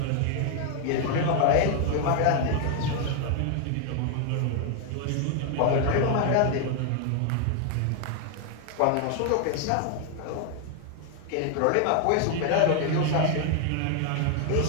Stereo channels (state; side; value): different; both; correlation 0.00